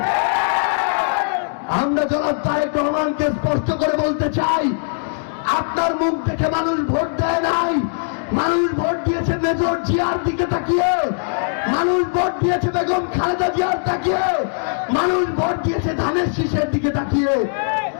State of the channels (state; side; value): silent; right; digital silence